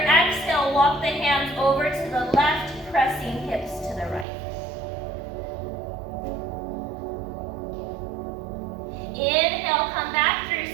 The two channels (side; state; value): left; drops out; at 4.2 s